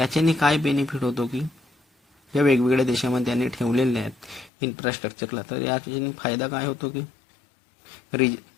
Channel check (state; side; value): drops out; right; at 4.5 s